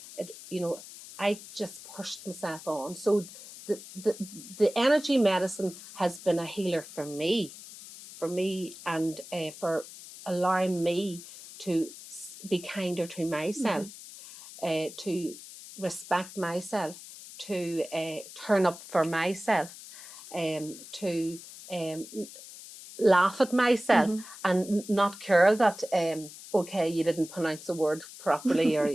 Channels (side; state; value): left; noise; hiss, 15 dB below the sound